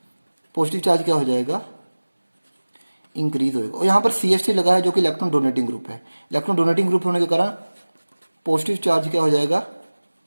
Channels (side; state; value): both; inverted; correlation -1.00